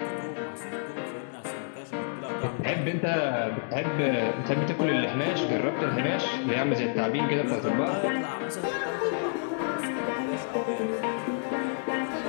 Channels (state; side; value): silent; right; digital silence